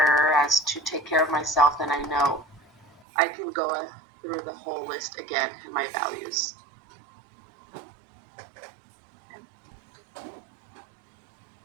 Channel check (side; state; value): left; drops out; at 3.0 s